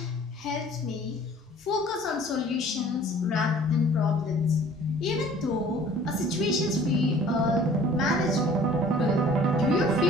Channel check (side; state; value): both; normal; correlation 0.51